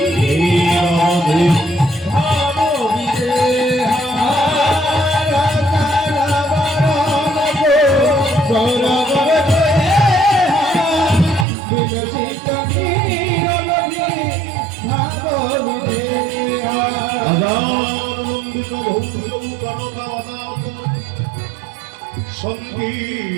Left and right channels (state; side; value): drops out; left; at 11.5 s